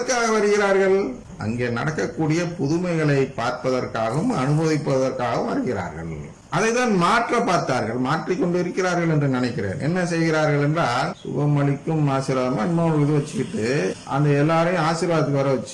வருகிறார்கள்? அங்கே நடக்கக்கூடிய புதுமைகளை பார்ப்பதற்காகவும் அனுபவிப்பதற்காகவும் வருகிறார்கள். அதைதான் மாற்ற பார்த்தார்கள், மாற்றிக்கொண்டு இருக்கிறார்கள் என்று நினைக்கிறேன். என்ன செய்கிறார்கள் என்றால், சுகம் அளிக்கும் ஆசீர்வாதமா இன்னொரு இது வச்சுக்கிட்டு அந்த எல்லாரையும் ஆசீர்வாதத்துக்கு வர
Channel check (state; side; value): identical; both; correlation 1.00